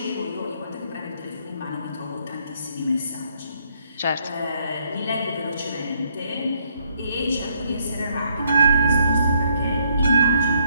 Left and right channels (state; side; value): inverted; both; correlation -0.71